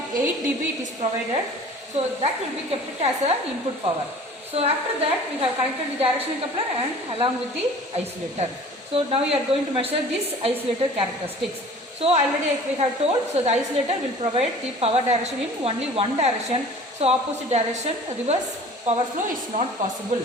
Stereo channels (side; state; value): both; normal; correlation 0.45